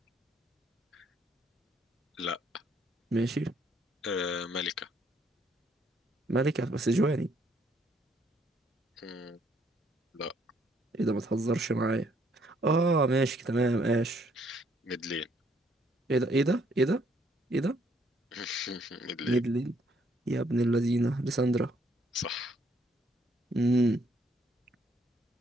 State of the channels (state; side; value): normal; both; correlation 0.68